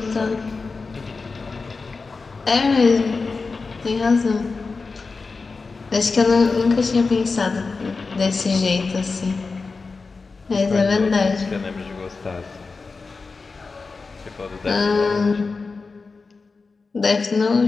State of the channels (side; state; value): right; quieter; 4.2 dB